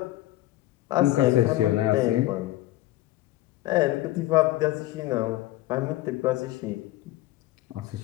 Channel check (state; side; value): quieter; right; 16.1 dB